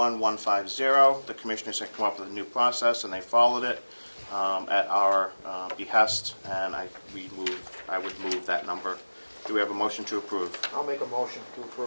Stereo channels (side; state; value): both; inverted; correlation -1.00